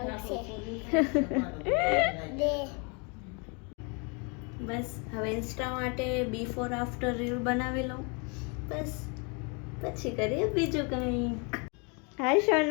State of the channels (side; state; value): right; quieter; 33.3 dB